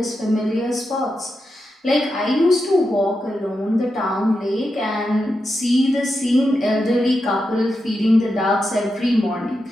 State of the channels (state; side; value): normal; both; correlation 0.87